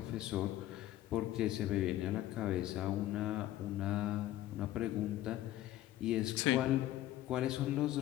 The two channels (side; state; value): right; quieter; 14.0 dB